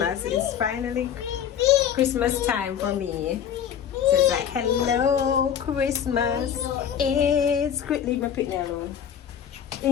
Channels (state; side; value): quieter; right; 8.9 dB